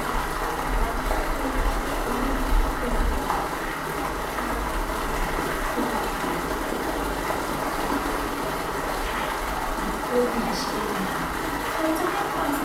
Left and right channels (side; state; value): both; identical; correlation 1.00